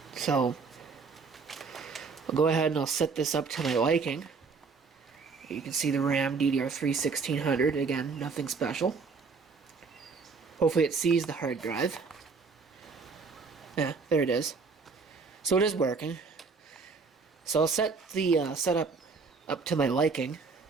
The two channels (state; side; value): quieter; left; 4.7 dB